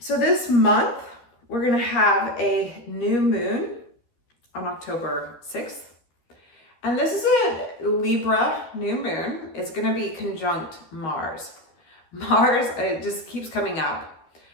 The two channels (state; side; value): late; right; 13 ms